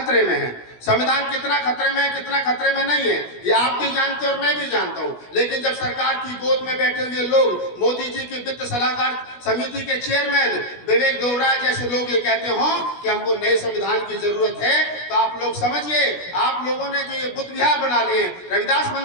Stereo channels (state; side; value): late; right; 16 ms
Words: में है। संविधान कितना खतरे में है, कितना खतरे में नहीं है, ये आप भी जानते हैं और मैं भी जानता हूं। लेकिन जब सरकार की गोद में बैठे हुए लोग, मोदी जी की वित्त सलाहकार समिति के चेयरमैन विवेक दोबराय जैसे लोग ये कहते हो कि हमको नए संविधान की जरूरत है, तो आप लोग समझिए, आप लोगों ने जो ये बुद्ध विहार बना लिए, रविदास